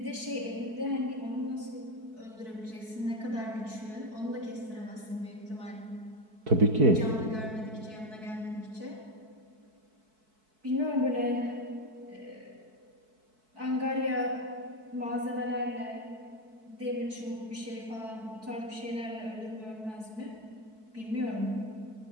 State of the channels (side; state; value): left; late; 4.6 ms